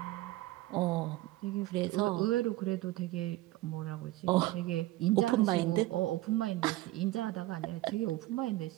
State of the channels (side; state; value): left; quieter; 17.7 dB